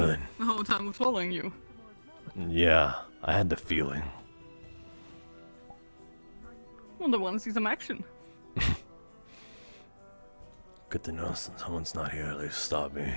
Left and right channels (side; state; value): both; inverted; correlation -1.00